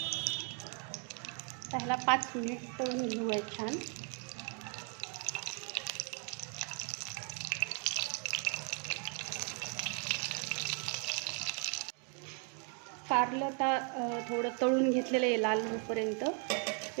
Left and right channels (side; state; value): left; quieter; 40.0 dB